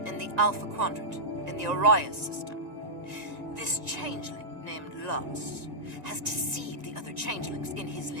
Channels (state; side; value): late; left; 1.9 ms